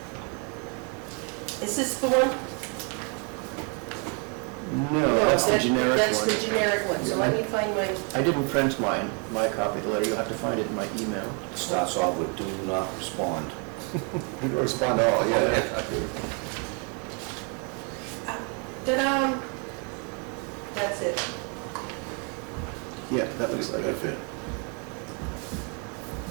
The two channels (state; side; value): quieter; left; 37.4 dB